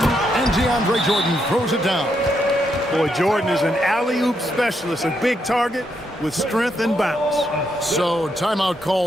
DeAndre Jordan throws it down. Boy, Jordan is an alley-oop specialist, a big target with strength and bounce. So timeout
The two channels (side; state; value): both; normal; correlation 0.79